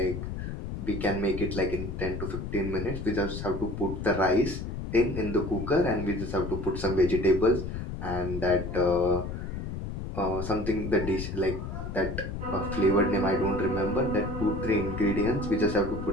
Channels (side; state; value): left; noise; rumble, 6 dB below the sound